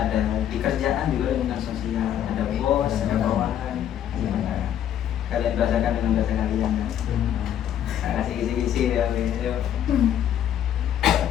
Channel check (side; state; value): right; quieter; 10.3 dB